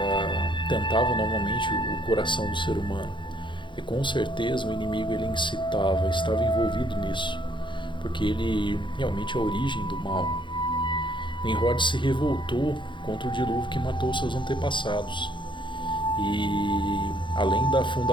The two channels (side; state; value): right; late; 0.23 ms